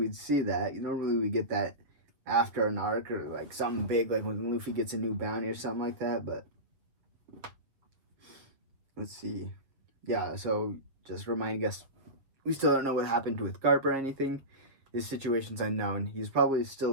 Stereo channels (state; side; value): late; left; 7.2 ms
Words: see that. Normally we get that after an arc or like something big, like when Luffy gets a new bounty or something like that, but let's see. Yeah, so just reminding us, we still don't know what happened with Garp or anything. His situation's unknown. He's probably